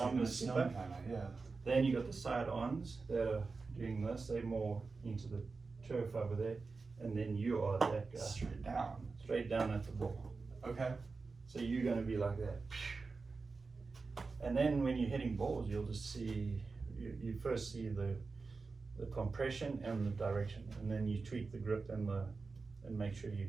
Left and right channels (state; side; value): quieter; left; 4.2 dB